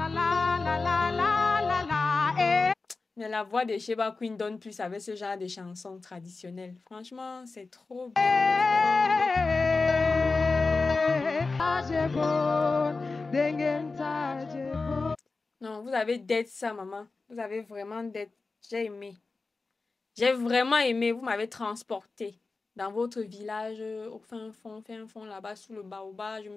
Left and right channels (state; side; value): quieter; right; 3.9 dB